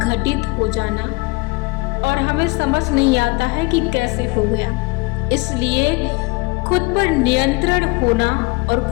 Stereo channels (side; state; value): right; quieter; 26.0 dB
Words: घटित हो जाना और हमें समझ नहीं आता है कि कैसे हो गया। इसलिए खुद पर नियंत्रण होना और